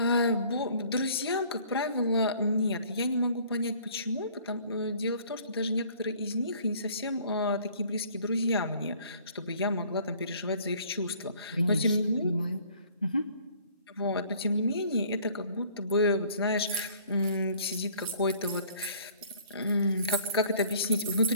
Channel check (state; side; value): inverted; both; correlation -0.55